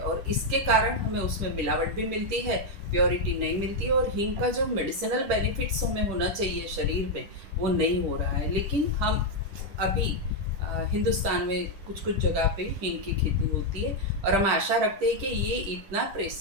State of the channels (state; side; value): late; left; 10 ms